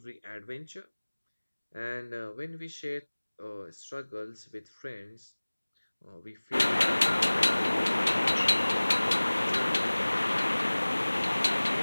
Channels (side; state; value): both; inverted; correlation -1.00